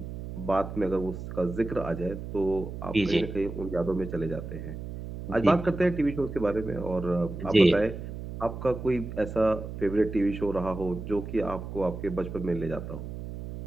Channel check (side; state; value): right; noise; hum, 8 dB below the sound